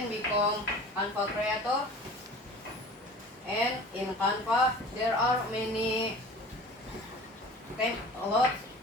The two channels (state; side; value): normal; both; correlation 0.42